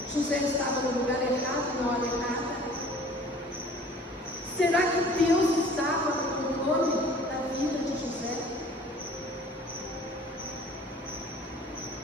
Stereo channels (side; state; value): both; normal; correlation 0.49